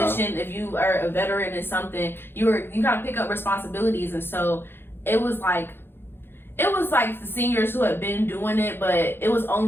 if you are a veteran in something, you kind of pick up responsibilities. And so it was like the seniors who had been doing it, but it was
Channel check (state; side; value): late; right; 0.10 ms